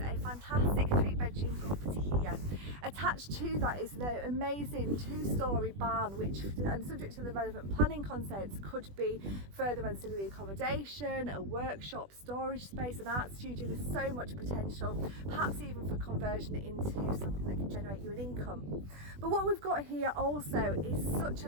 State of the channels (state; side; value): late; left; 20 ms